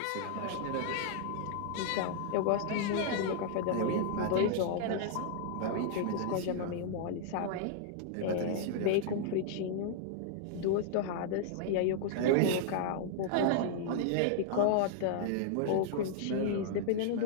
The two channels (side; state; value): both; different; correlation -0.01